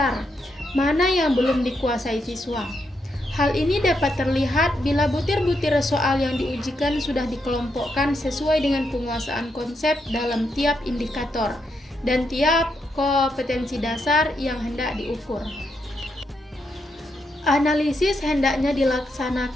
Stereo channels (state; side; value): normal; both; correlation 0.81